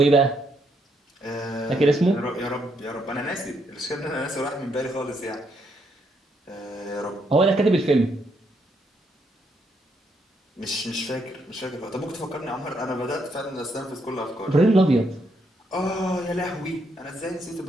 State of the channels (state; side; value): normal; both; correlation 0.75